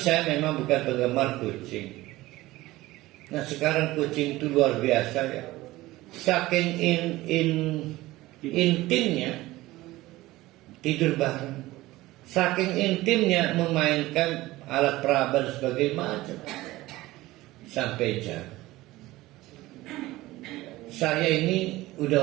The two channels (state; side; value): quieter; left; 18.1 dB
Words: memang bukan penggemar kucing. Nah sekarang kucing itu luar biasa ya. Saking intimnya tidur bareng. Saking intimnya memainkan alat peraba sebagai macam. Sampai jam. Saya ini